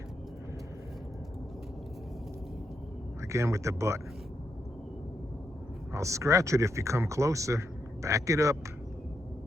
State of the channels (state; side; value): normal; both; correlation 0.82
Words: Again with the butt. I'll scratch it if you come closer. Back it up.